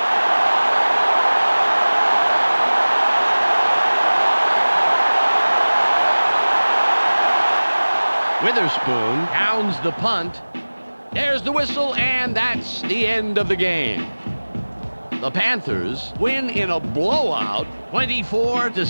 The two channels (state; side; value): inverted; both; correlation -1.00